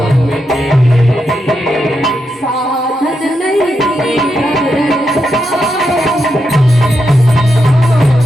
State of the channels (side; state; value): both; normal; correlation 0.84